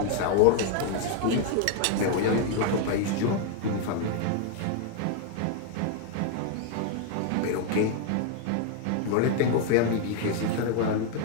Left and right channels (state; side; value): different; both; correlation 0.00